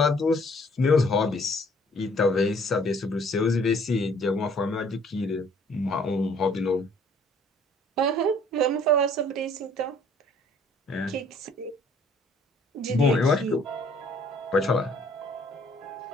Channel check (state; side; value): normal; both; correlation 0.58